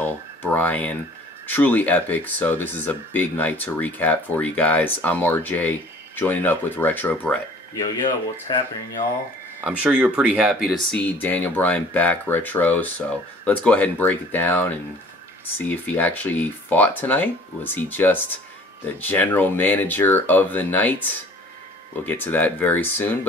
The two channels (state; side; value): normal; both; correlation 0.50